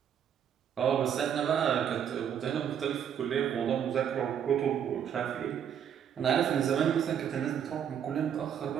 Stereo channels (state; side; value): quieter; left; 8.8 dB